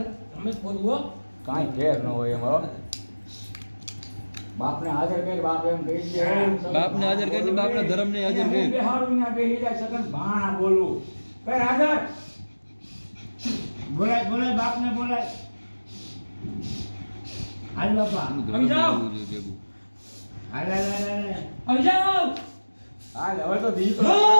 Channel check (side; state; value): both; inverted; correlation -1.00